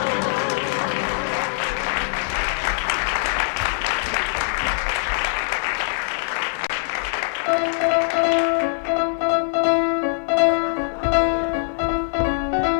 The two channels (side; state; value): right; silent; 64 dB below the other